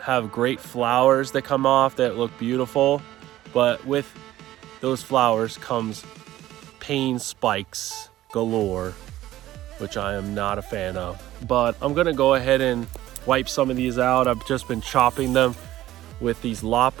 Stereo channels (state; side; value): quieter; left; 14.6 dB